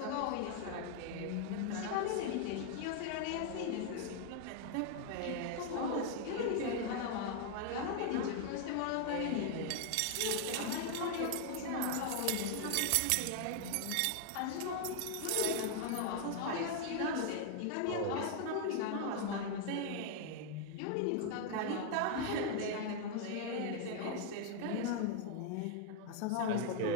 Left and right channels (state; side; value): different; both; correlation 0.00